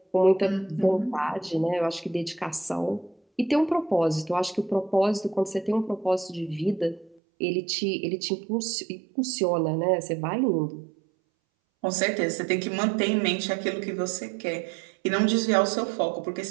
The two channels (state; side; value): drops out; left; at 7.2 s